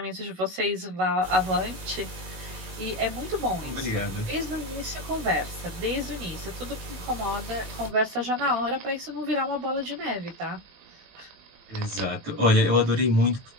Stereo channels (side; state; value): left; late; 18 ms